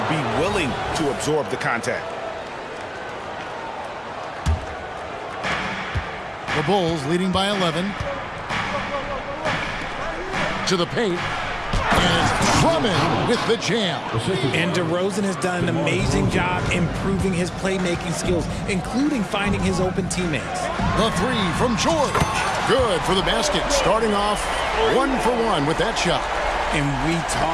be willing to absorb the contact. The Bulls leading by 11. To the paint. And it's Drummond with the jam. And DeRozan has done an amazing job improving his playmaking skills, including finding his open teammates. The 3 from George. Good for the basket. Starting off 1 for 1 with that shot. And we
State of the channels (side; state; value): both; identical; correlation 1.00